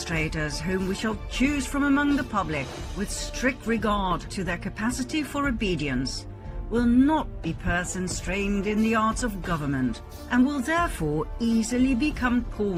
whom we shall choose from among the public, with strict regard to their capacity for obedience, will not be persons trained in the arts of government, and will therefore easily become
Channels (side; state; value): both; identical; correlation 1.00